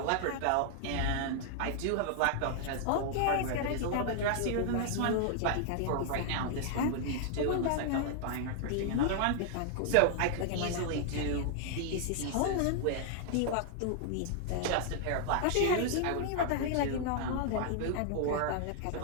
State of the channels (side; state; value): both; different; correlation 0.00